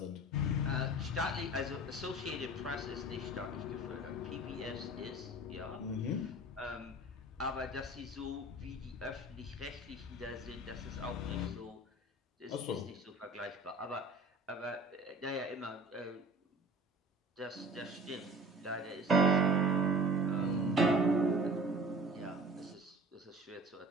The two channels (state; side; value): normal; both; correlation 0.44